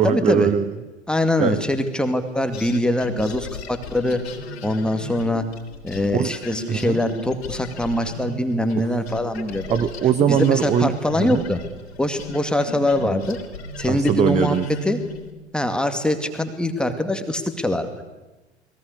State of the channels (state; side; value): normal; both; correlation 0.68